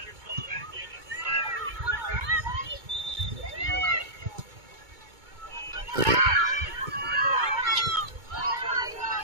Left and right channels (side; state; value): left; late; 2.2 ms